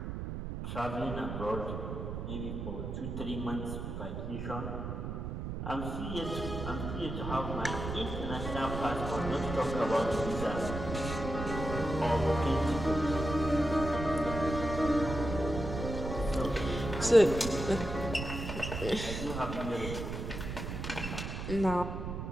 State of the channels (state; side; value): noise; right; rumble, 5 dB below the sound